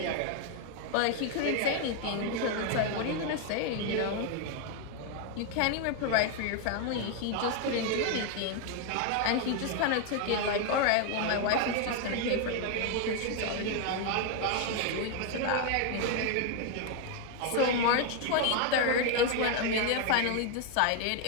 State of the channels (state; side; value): different; both; correlation 0.01